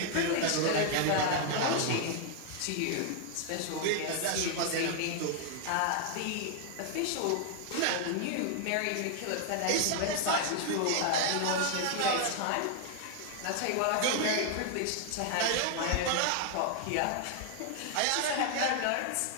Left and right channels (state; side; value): different; both; correlation 0.00